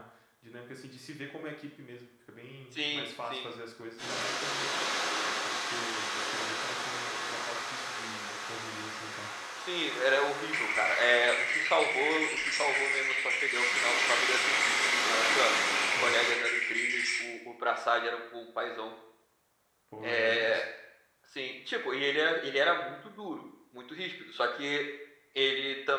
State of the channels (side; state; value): both; identical; correlation 1.00